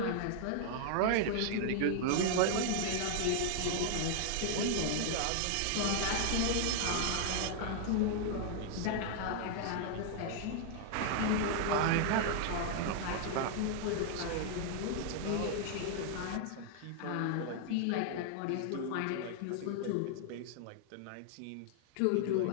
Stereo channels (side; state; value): both; different; correlation -0.01